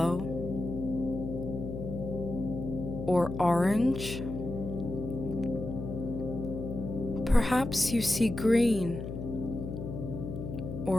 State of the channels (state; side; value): noise; left; hum, 6 dB below the sound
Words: or orange? Perhaps you see green